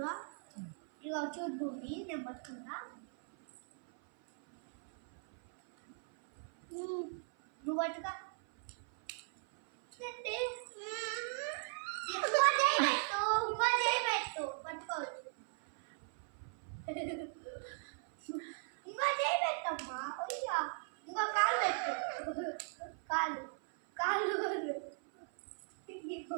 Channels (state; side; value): silent; left; 52 dB below the other